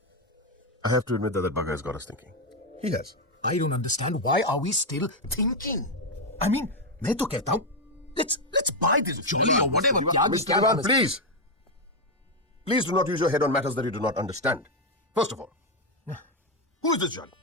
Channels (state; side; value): normal; both; correlation 0.04